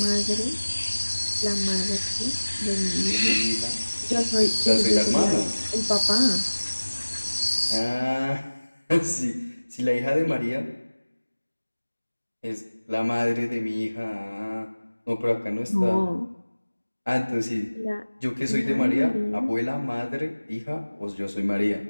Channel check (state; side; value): inverted; both; correlation -1.00